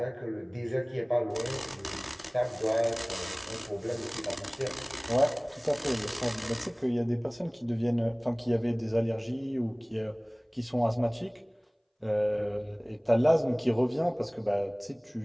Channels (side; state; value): both; identical; correlation 1.00